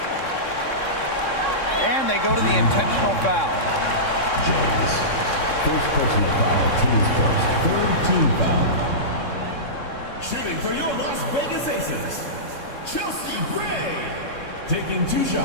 And they go to the intentional foul. James, first personal foul, team's first, third team foul. Shooting for your Las Vegas Aces, Chelsea Gray, taking 2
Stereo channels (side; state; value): right; late; 3.6 ms